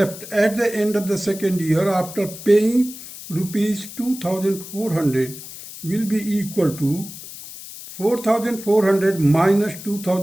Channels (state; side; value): noise; left; hiss, 13 dB below the sound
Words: at the end of the second year after paying rupees 2,400 will be equal to 4,400 minus